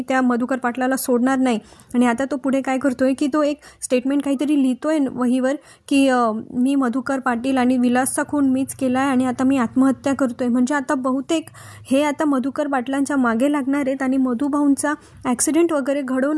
त्या मधुकर पाटलाला सोडणार नाही. आणि आता तो पुढे काय करतोय की तो एक स्टेटमेंट काहीतरी लिहितोय वहीवर की मी मधुकर पाटील आणि विलासचा खून मीच केला आहे आणि आता मी आत्महत्या करतोय. म्हणजे आता बहुतेक हे आता मधुकर पाटलांच्या मागे लागणार आहेत आणि मधुभाऊंचा ॲक्सिडेंट वगैरे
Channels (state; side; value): identical; both; correlation 1.00